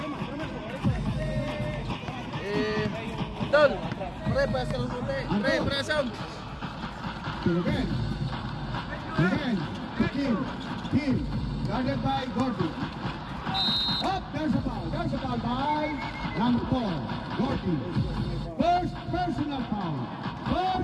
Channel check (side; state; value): both; identical; correlation 1.00